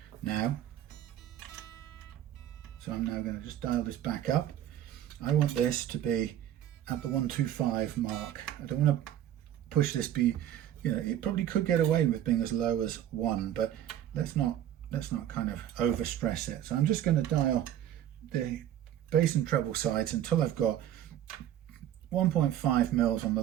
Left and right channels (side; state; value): left; quieter; 11.5 dB